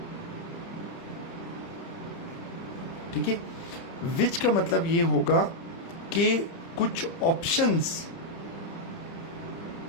ठीक है, विच का मतलब ये होगा कि कुछ ऑप्शंस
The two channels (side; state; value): right; late; 30 ms